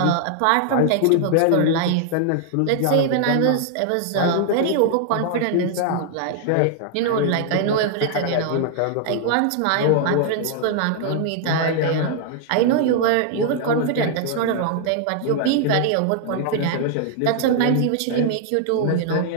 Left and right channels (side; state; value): both; different; correlation 0.00